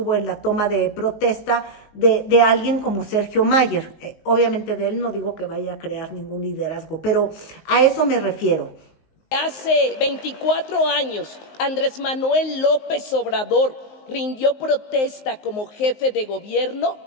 en la toma de protesta de alguien como Sergio Mayer. Obviamente de él no digo que vaya a crear ningún liderazgo, pero a eso me refiero. Hace 24 años, Andrés Manuel López Obrador rindió protesta como jefe de gobierno.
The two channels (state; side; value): late; right; 19 ms